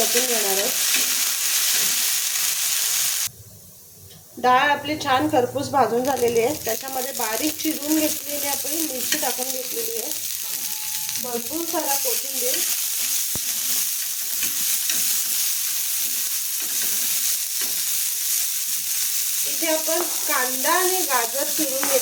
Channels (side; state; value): both; identical; correlation 1.00